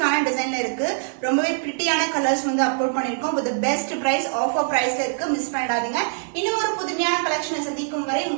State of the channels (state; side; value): silent; left; 59 dB below the other